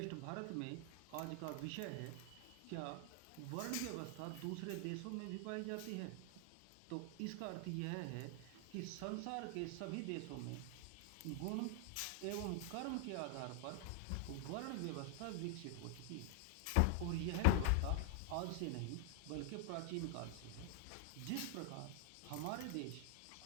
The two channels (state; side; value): different; both; correlation 0.00